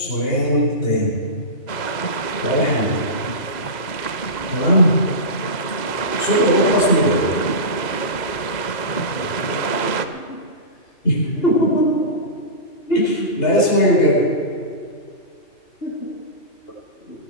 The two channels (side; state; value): right; late; 2.0 ms